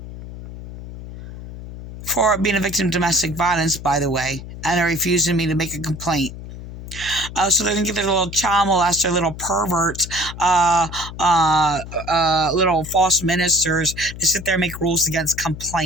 For being a victim of domestic violence, by the way. And they're refusing me to make a complaint. So they're going to get their little child molester, little perverts, little false ministers to sit there and make rules against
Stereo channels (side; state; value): left; noise; hum, 12 dB below the sound